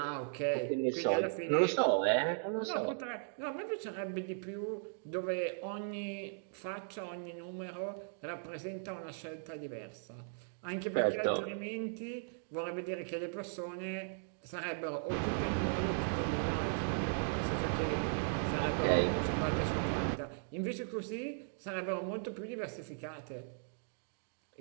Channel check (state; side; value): silent; left; digital silence